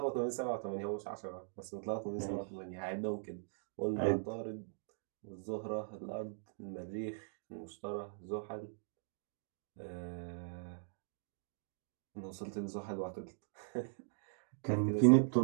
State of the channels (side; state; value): left; silent; digital silence